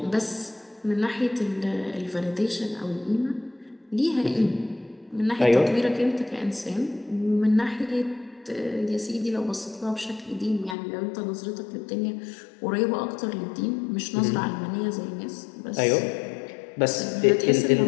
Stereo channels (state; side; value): drops out; right; at 10.8 s